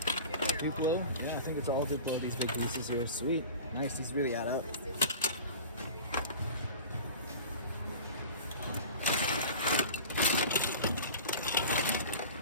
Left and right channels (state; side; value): inverted; both; correlation -0.36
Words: Duplo? Yeah, I think it's all Duplo, these big pieces here. Sweet. Nice, these really add up.